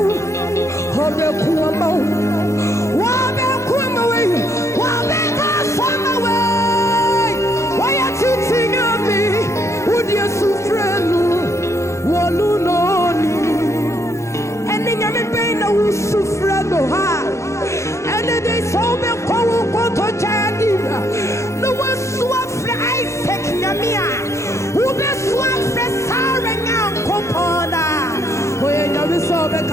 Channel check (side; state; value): right; late; 0.14 ms